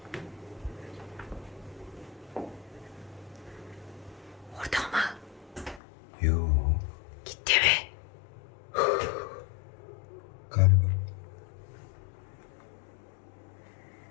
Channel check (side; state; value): right; drops out; at 5.8 s